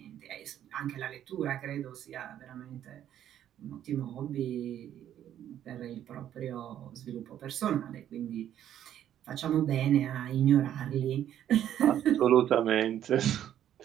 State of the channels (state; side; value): quieter; left; 10.9 dB